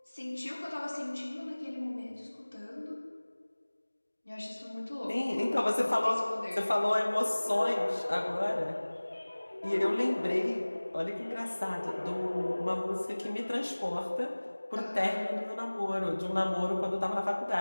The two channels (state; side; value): inverted; both; correlation -1.00